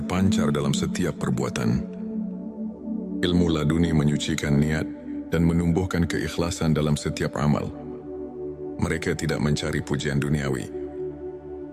dalam setiap perbuatan. Ilmu laduni menyucikan niat dan menumbuhkan keikhlasan dalam setiap amal. Mereka tidak mencari pujian duniawi,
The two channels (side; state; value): both; identical; correlation 1.00